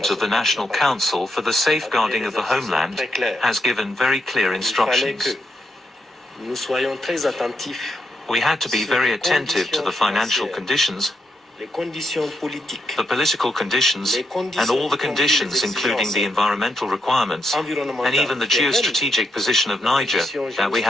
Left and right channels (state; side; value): normal; both; correlation 0.82